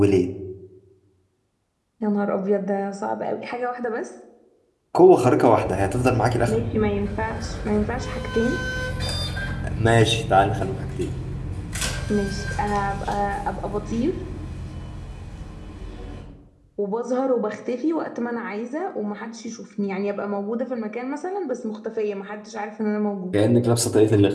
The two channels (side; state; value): both; identical; correlation 1.00